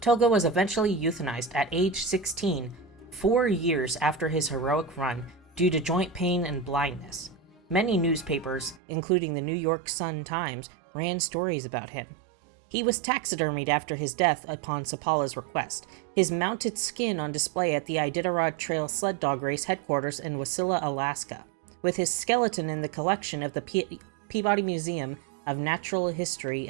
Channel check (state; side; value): drops out; left; at 8.8 s